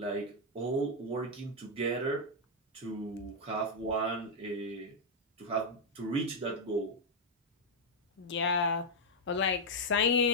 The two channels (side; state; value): both; normal; correlation -0.01